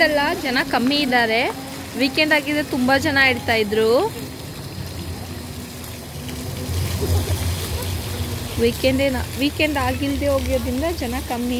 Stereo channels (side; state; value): both; identical; correlation 1.00